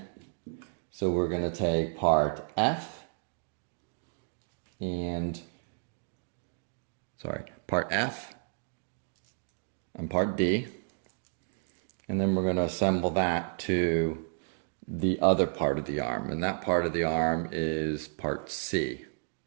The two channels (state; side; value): silent; left; digital silence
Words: So we're going to take part F and, part F and part D. And then we're going to assemble that to the other part of the arm. And that part of the arm is part C.